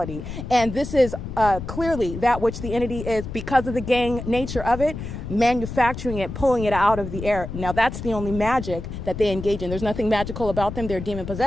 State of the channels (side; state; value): left; noise; rumble, 8 dB below the sound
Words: And this is clearly that which the entity is, because of the gang nature of it, manufacturing it, pulling it out of the air. Now, that's the only magic that they engage in. There's nothing magical about them. They're demon